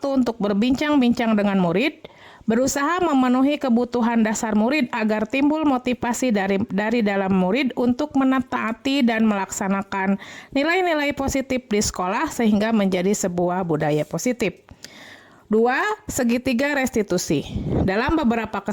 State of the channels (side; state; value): both; identical; correlation 1.00